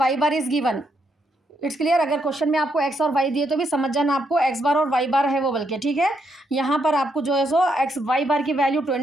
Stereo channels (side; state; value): both; normal; correlation 0.77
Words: bar is given. It's clear. अगर question में आपको x और Y दिए तो भी समझ जाना आपको एक्स बार और वाई बार है वो बल्कि, ठीक है। यहाँ पर आपको जो है सो एक्स वाई बार की वैल्यू